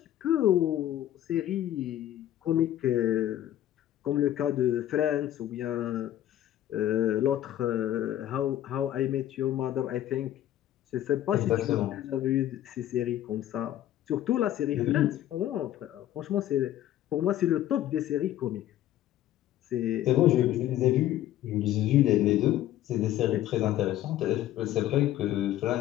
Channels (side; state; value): right; quieter; 12.7 dB